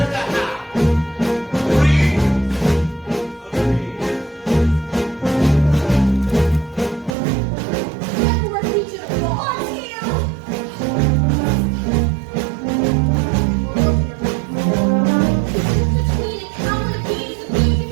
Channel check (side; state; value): left; drops out; at 7.2 s